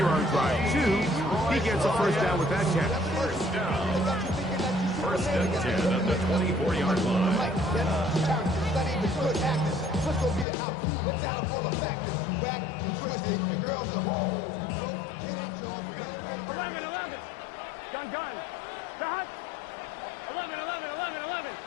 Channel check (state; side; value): drops out; right; at 10.5 s